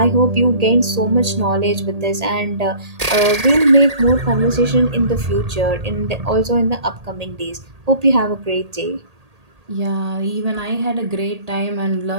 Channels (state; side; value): late; left; 1.8 ms